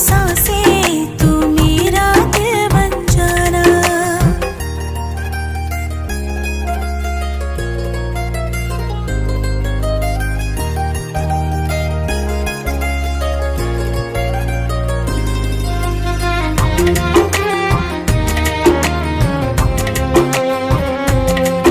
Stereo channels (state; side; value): identical; both; correlation 1.00